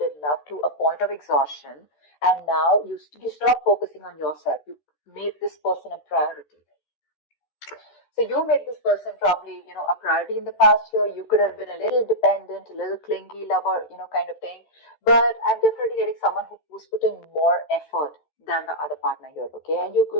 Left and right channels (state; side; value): late; right; 13 ms